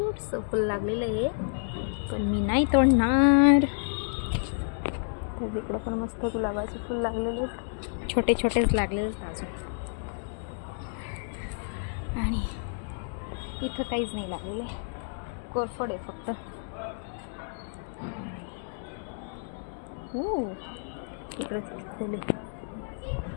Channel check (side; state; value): right; silent; digital silence